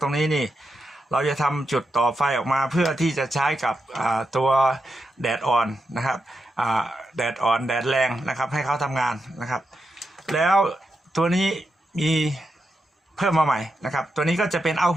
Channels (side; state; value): both; normal; correlation 0.86